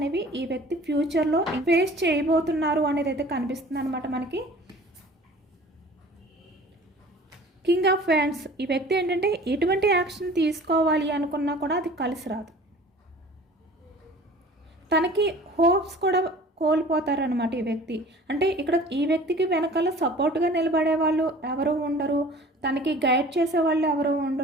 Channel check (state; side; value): normal; both; correlation 0.46